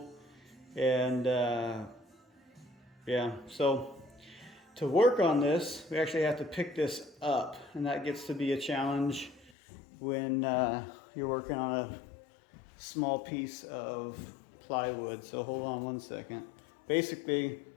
And yeah, so to work on this, we actually have to pick this up. And that gets to be a challenge when you're working on a small piece of plywood. So hold on one second. Basically,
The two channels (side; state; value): right; drops out; at 9.5 s